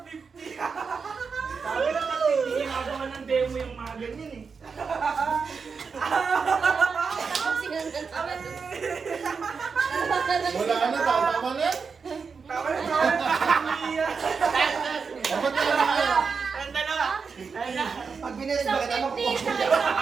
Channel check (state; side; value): quieter; left; 5.4 dB